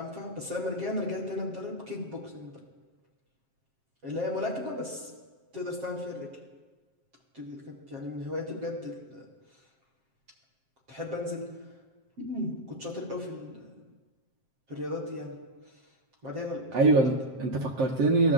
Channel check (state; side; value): late; left; 7.6 ms